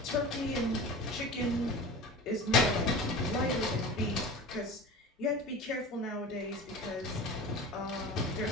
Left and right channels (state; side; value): normal; both; correlation 0.34